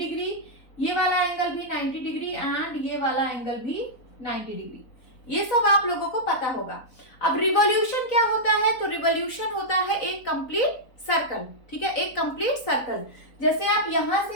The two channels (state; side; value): late; right; 4.0 ms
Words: ये वाला एंगल भी 90 डिग्री एंड ये वाला एंगल भी 90 डिग्री। ये सब आप लोगों को पता होगा। अब रिवॉल्यूशन क्या होता है? तो रिवॉल्यूशन होता है एक कंप्लीट सर्कल। ठीक है, एक कंप्लीट सर्कल। जैसे आप यहां